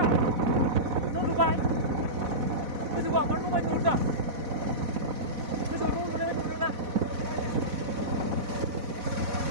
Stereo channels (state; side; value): late; left; 4.0 ms